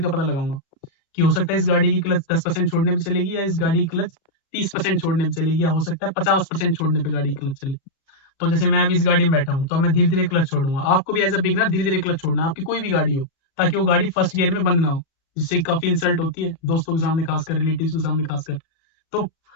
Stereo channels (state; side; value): late; right; 36 ms